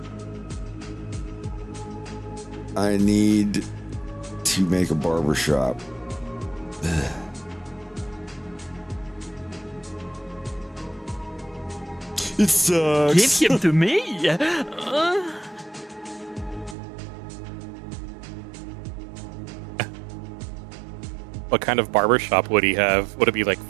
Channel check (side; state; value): left; drops out; at 16.8 s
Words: need to make a barbershop. It sucks. Give him to me. what kind of barbershop would he have? Would it be like